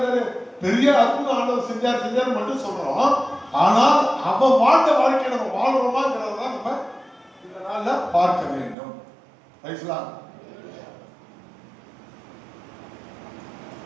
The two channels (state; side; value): drops out; left; at 8.8 s